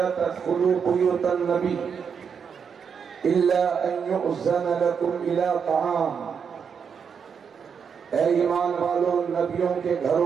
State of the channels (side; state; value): left; quieter; 6.7 dB